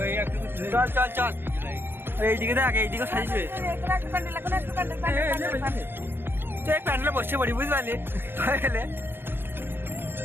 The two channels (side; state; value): left; late; 0.10 ms